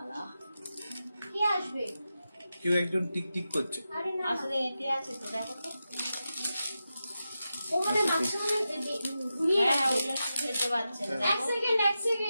কে আসবে? কেউ একজন টিক টিক করছে। আরে না, আসলে এটি আছে তো, দেখো তো। ও মানে মাঝখানে ঘুরিয়ে হ্যাঁ, রাখবে। ওগুলো খেতে পাচ্ছে না, এক দেখো। সেকেন্ড, এক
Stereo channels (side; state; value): both; inverted; correlation -0.91